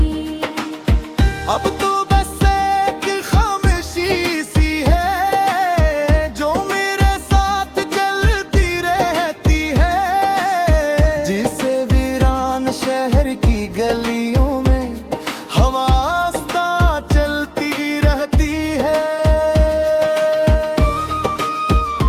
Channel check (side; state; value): both; identical; correlation 1.00